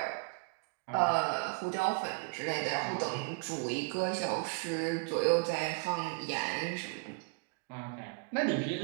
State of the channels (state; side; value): quieter; left; 33.2 dB